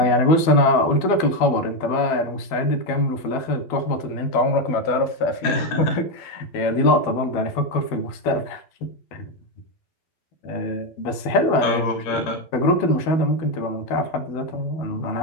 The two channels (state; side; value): late; right; 12 ms